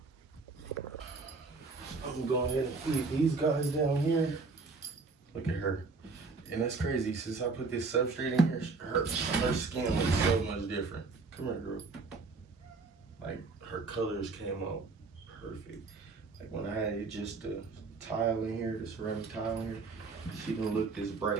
I'm gonna go ahead and feed these guys down here. Look at her. And that's crazy. Since I put this substrate in here, her skin looks so much different. Come here, girl. Like, her colors came out perfect. Like, when I had just the tile in here, the ceramic tile in here, she didn't look this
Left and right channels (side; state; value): left; quieter; 4.1 dB